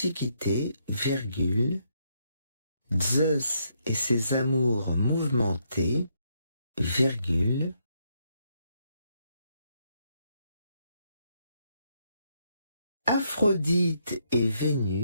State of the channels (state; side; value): inverted; both; correlation -0.76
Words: virgule, Zeus et ses amours mouvementés, virgule, Aphrodite et